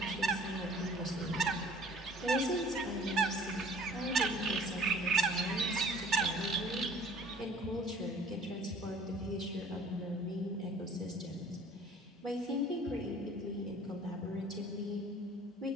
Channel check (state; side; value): normal; both; correlation 0.51